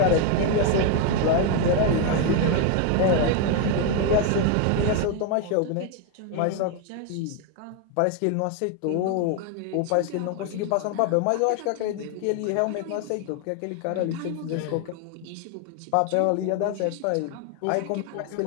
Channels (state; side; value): different; both; correlation 0.01